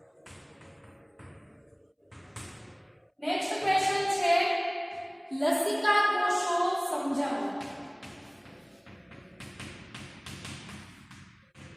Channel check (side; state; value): both; identical; correlation 1.00